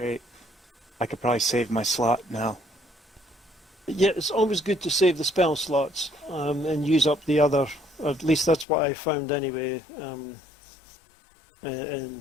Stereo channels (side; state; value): right; drops out; at 8.7 s